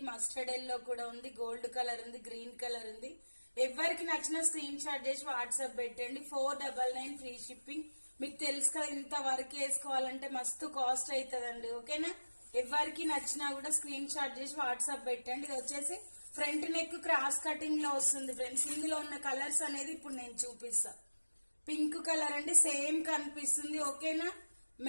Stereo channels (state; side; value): inverted; both; correlation -1.00